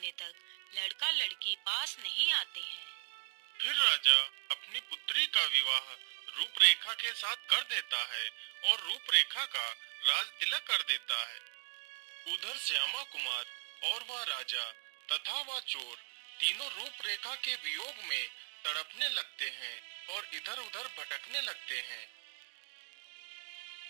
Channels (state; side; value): silent; left; digital silence